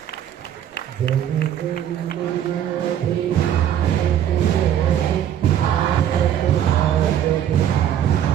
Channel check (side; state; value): left; quieter; 10.3 dB